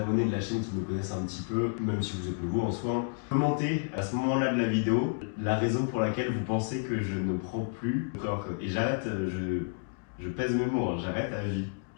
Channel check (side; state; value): right; silent; digital silence